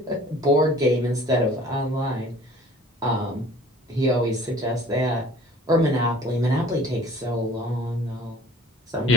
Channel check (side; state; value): both; normal; correlation 0.50